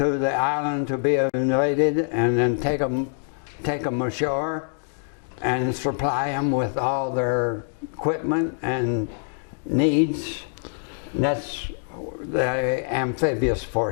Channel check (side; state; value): right; silent; digital silence